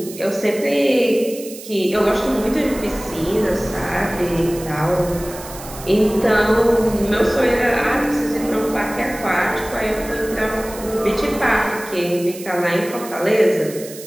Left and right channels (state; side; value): noise; right; hiss, 15 dB below the sound